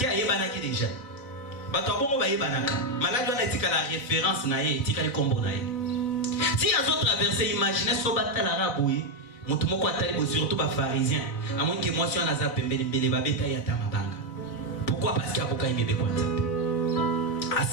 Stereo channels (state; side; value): late; right; 4.0 ms